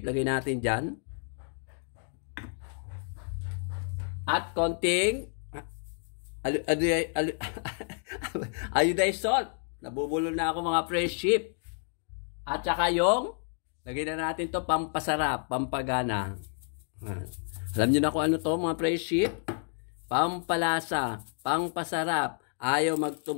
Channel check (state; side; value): silent; right; 58 dB below the other